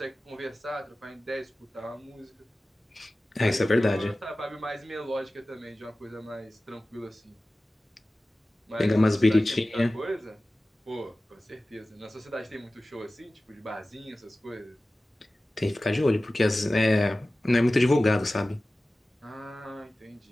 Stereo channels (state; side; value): normal; both; correlation 0.96